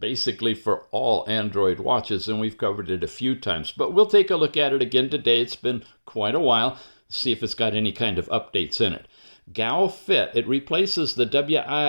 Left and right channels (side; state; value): both; inverted; correlation -1.00